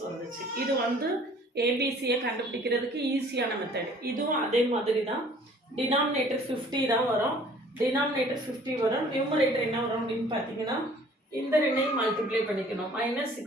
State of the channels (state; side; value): normal; both; correlation 0.53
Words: வந்துச்சு. இது வந்து ஏபிசியை கண்டுபிடிக்கிறதுக்கு ஈஸியான மெத்தட். இதுவும் அதே மாதிரி தான். டினாமினேட்டர் 50 தான் வரும். டினாமினேட்டர் 50 வரும். நியூமரேட்டர் என்ன வரும் அப்படின்னு பார்த்தீங்கன்னா இந்த ரெண்டையும் மல்டிப்ளை பண்ணிக்கணும்.